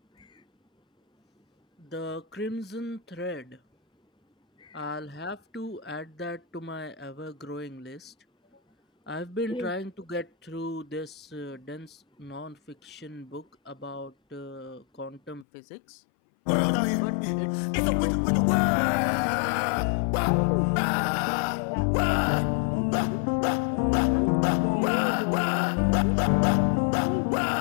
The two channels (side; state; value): right; drops out; at 15.5 s